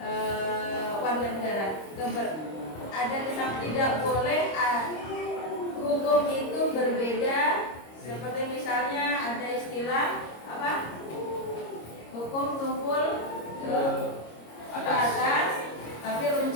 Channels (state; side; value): late; right; 26 ms